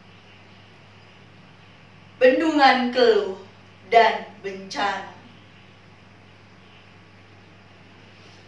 bendungan keluh dan bencana.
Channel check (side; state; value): both; identical; correlation 1.00